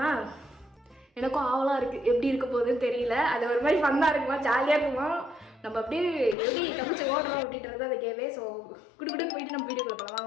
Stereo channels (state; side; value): drops out; right; at 6.4 s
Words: எனக்கும் ஆவலாக இருக்குது, எப்படி இருக்க போகுதுன்னு தெரியல. அது ஒரு மாதிரி ஃபன்னாக இருக்குமா, ஜாலியாக இருக்குமா, நம்ம அப்படியே எப்படி தப்பிச்சு ஓடுறோம் அப்படின்றது அந்த கேமே. ஸோ குடுக்குடுன்னு போயிட்டு நம்ம வீடியோக்குள்ள போகலாம்.